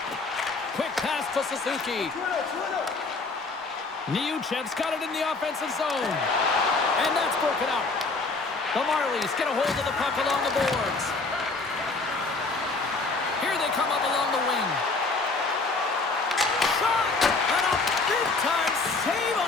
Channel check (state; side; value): quieter; right; 3.8 dB